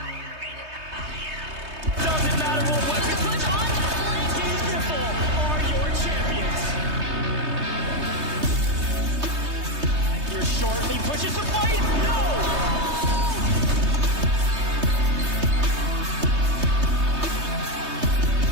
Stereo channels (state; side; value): late; left; 3.2 ms